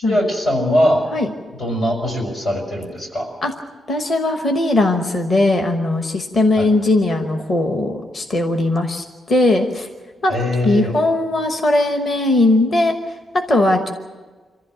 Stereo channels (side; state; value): both; normal; correlation 0.79